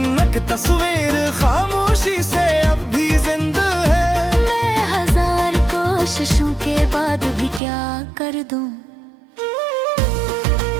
एक तस्वीर खामोशी से अब भी जिंदा है। मैं हजार कोशिशों के बाद भी क्या कर दूं।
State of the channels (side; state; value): left; drops out; at 7.6 s